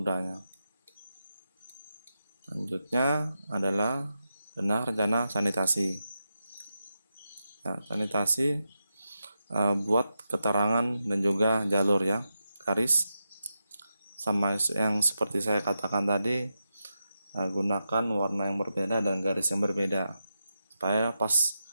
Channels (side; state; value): both; inverted; correlation -0.88